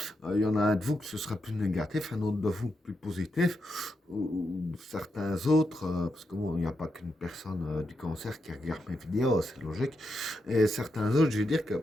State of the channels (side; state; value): both; normal; correlation 0.84